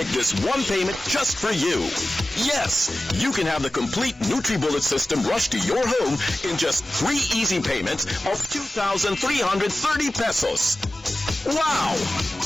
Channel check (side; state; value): both; normal; correlation 0.95